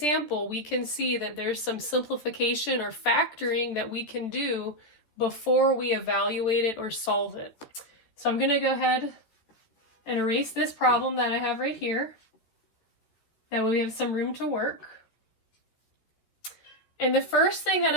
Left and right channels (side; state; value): right; late; 13 ms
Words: we can see that there's some simplification or factoring that we can do before we evaluate it or solve it. So I'm going to go ahead and erase this problem that I have right here. That way we have some room to work. And the first thing that